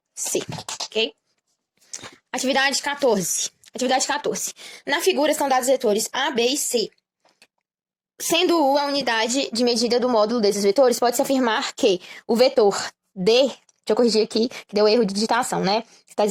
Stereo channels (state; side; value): identical; both; correlation 1.00